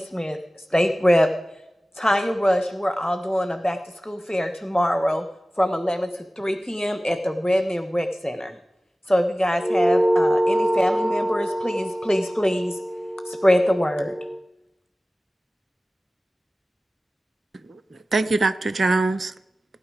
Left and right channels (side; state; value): both; normal; correlation 0.97